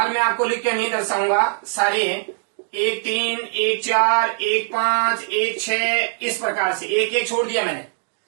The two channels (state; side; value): silent; left; digital silence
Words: मैं आपको लिख के नहीं दर्शाऊंगा सारे, 1 3, 1 4, 1 5, 1 6, इस प्रकार से 1 1 छोड़ दिया मैंने।